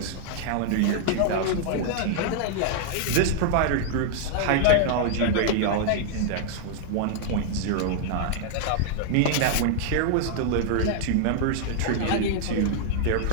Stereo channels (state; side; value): different; both; correlation 0.00